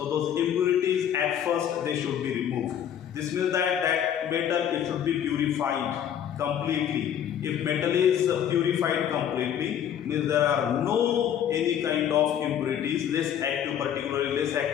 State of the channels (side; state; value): right; quieter; 9.6 dB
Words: those impurities at first they should be removed. This means that that metal it should be purified completely. If metal is purified completely, means there are no any kind of impurities, less active, particularly less